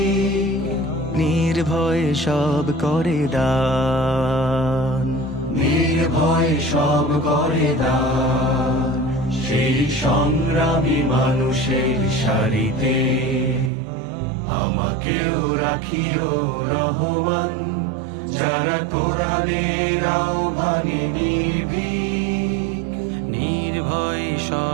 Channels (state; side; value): drops out; left; at 13.7 s